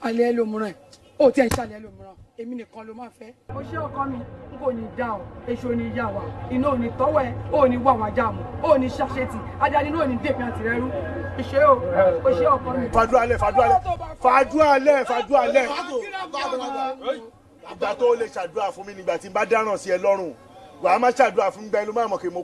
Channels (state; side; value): identical; both; correlation 1.00